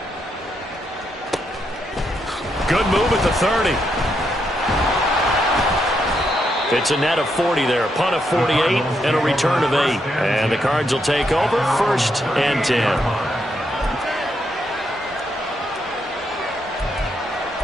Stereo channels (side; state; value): both; normal; correlation 0.79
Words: Good move at the 30. It's a net of 40 there. Punt of 48 and a return of 8. And the Cards will take over 1st and 10.